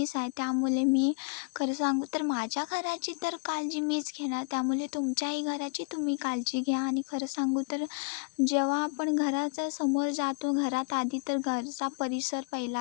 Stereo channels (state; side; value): quieter; right; 33.5 dB